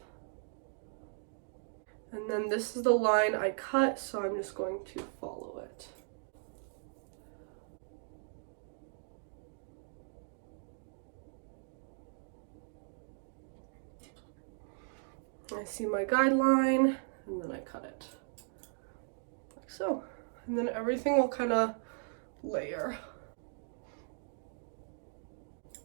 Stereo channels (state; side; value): silent; left; digital silence